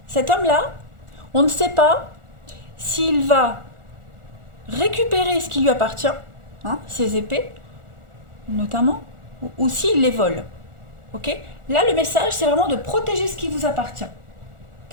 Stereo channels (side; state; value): left; late; 1.4 ms